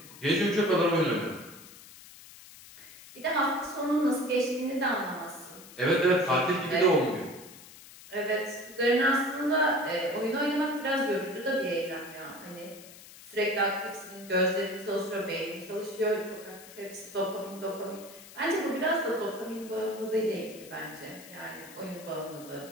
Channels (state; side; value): noise; left; hiss, 18 dB below the sound